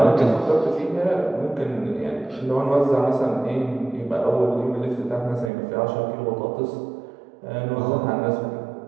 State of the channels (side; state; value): left; drops out; at 5.5 s